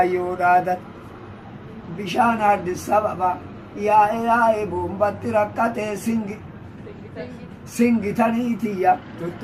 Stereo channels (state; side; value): identical; both; correlation 1.00